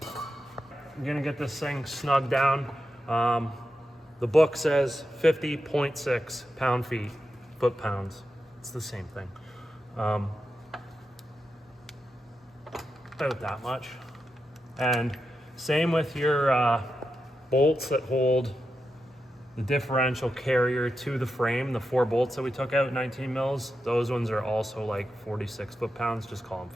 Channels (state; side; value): normal; both; correlation 0.88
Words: I'm gonna get this thing snug down. The book says 50.6 pound-feet, foot-pounds. It's the same thing. About that much. And same with your bolts that hold the differential carrier to the frame. The 4 bolts that we took out, 19 mils, those ones are also like 46 foot-pounds. Just call them